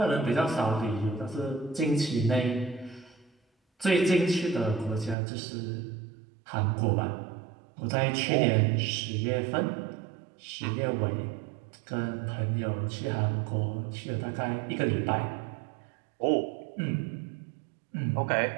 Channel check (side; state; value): left; drops out; at 5.2 s